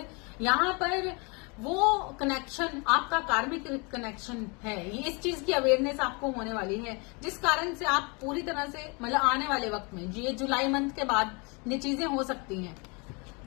यहाँ पर वो कनेक्शन आपका कार्मिक कनेक्शन है। ये इस चीज की अवेयरनेस आपको होने वाली है, जिस कारण से आप पूरी तरह से मतलब आने वाले वक्त में, ये जुलाई मंथ के बाद ये चीजें हो सकती हैं।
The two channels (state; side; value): quieter; right; 30.7 dB